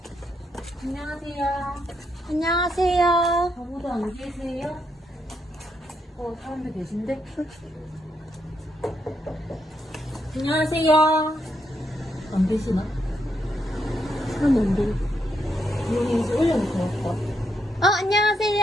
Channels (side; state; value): both; normal; correlation 0.79